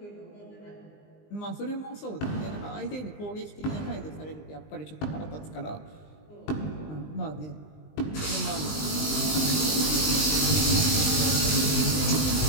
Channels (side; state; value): right; late; 20 ms